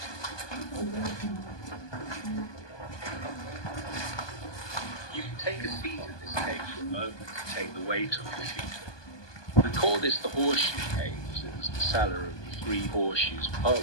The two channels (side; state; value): right; late; 1.2 ms